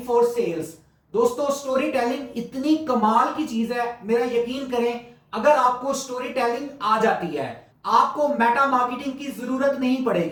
for sales. दोस्तों, स्टोरी टेलिंग इतनी कमाल की चीज है, मेरा यकीन करें, अगर आपको स्टोरी टेलिंग आ जाती है, आपको मेटा मार्केटिंग की जरूरत नहीं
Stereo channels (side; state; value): both; identical; correlation 1.00